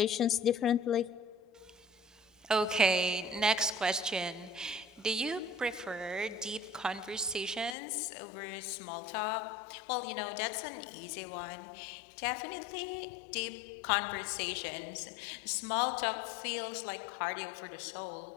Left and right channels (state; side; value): drops out; right; at 7.8 s